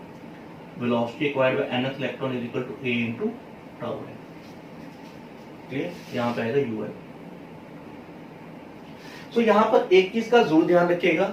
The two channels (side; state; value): both; identical; correlation 1.00